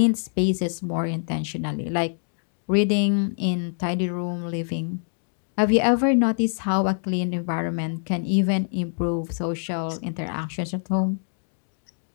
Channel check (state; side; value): silent; right; 61 dB below the other